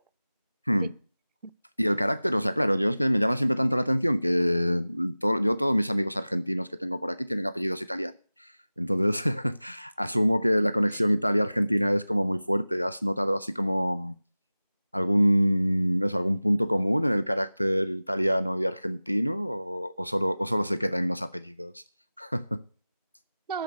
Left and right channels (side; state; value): both; inverted; correlation -0.98